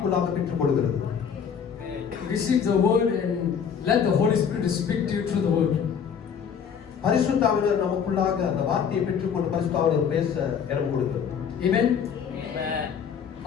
பெற்றுக்கொள்கிறது. Receive the word and let the Holy Spirit speak to you through the word. பரிசுத்த ஆவியானவர் நமக்குள்ளாக அந்த வார்த்தையை பெற்றுக்கொண்டு பரிசுத்த ஆவியானவர் பேச இடம் கொடுக்கிறது. Amen. Amen.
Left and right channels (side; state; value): right; quieter; 7.2 dB